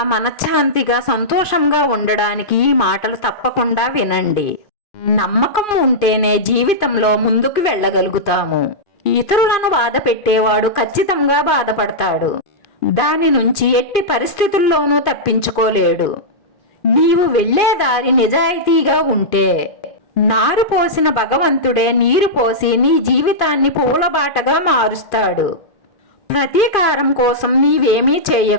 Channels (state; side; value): late; right; 2.5 ms